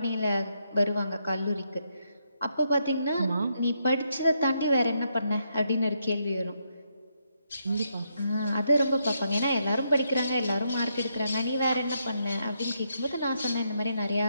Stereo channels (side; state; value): both; inverted; correlation -0.79